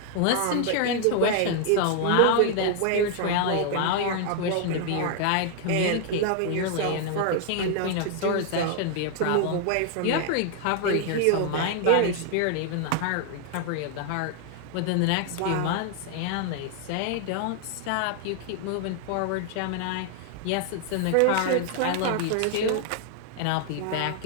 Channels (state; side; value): different; both; correlation 0.00